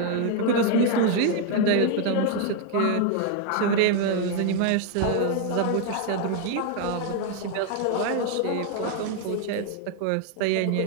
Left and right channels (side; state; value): both; different; correlation 0.00